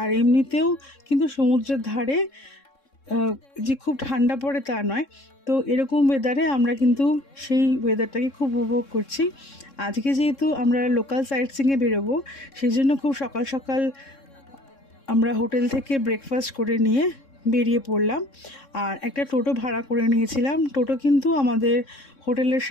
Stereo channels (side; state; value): right; late; 3.6 ms